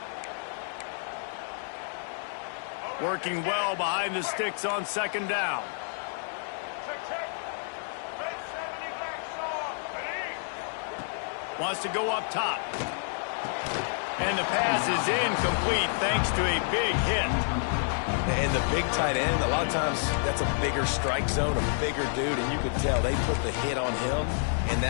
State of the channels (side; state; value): right; silent; digital silence